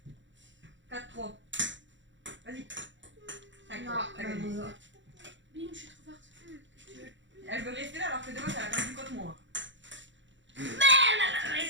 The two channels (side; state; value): left; late; 0.54 ms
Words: 4-3. Vas-y. 5-3. Non, T'as gagné. Bim, je suis trop forte. Elle veut rester là alors que demain, elle a perdu contre moi. Bah,